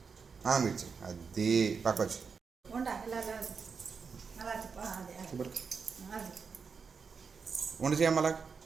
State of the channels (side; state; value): left; quieter; 5.6 dB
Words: అన్నం ఇచ్చే. అది పక్క వచ్చి వండి చేయమ్మా అలా.